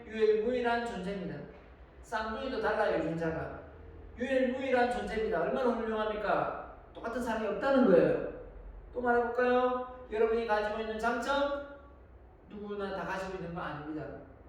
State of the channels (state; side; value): identical; both; correlation 1.00